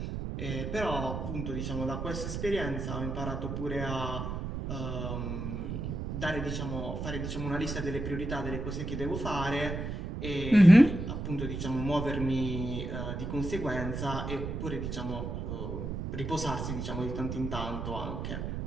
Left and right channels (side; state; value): right; noise; rumble, 4 dB below the sound